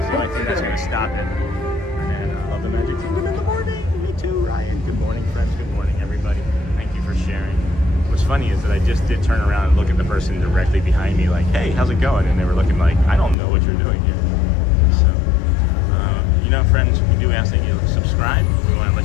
the only thing that's going to stop it. And I love the Magic Kingdom in the morning. Me too, Ryan. Good morning, friends. Good morning, everybody. Thank you for sharing. What's funny is that I just did turn around and look at the person directly behind me like, hey, how's it going? And they were looking like, I don't know what you're doing here. So, you know, friends, we do ask that you subscribe. We want to let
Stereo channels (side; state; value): right; drops out; at 13.4 s